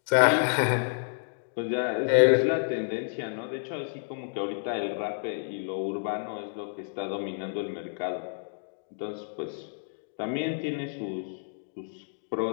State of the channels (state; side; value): silent; right; digital silence